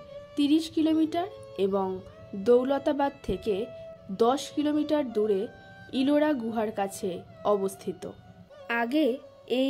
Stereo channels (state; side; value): identical; both; correlation 1.00